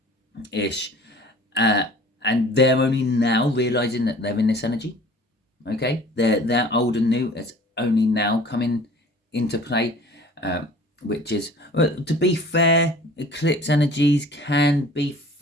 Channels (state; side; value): normal; both; correlation 0.47